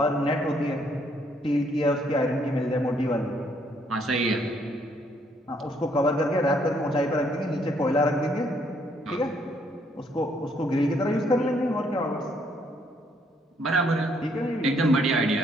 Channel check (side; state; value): both; normal; correlation 0.69